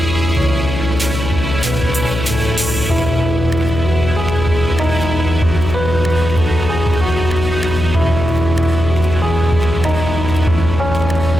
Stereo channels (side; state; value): left; noise; hum, 5 dB below the sound